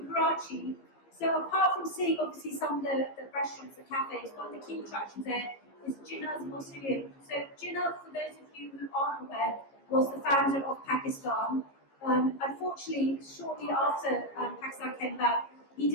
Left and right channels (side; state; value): right; late; 15 ms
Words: Karachi. So apart from seeing obviously some of the restaurants, the cafes, one of the key attractions there is Jinnah's Mausoleum. So Jinnah, for those of you who aren't aware, was the founder of Pakistan. Unfortunately, shortly after Pakistan came about, he